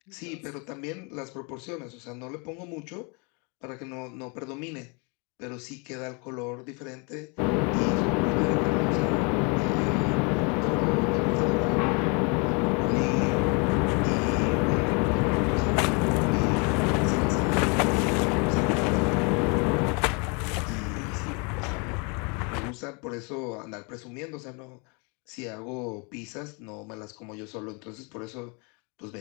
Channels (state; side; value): quieter; right; 32.8 dB